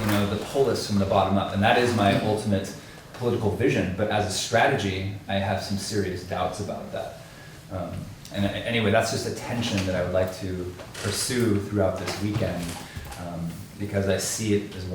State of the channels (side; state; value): both; identical; correlation 1.00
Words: the polis from the bottom up. And that is my ultimate political vision. But as a strategy, I have some serious doubts about that. And anyway, that's just a tension that I would like to pursue throughout this weekend, because I see it as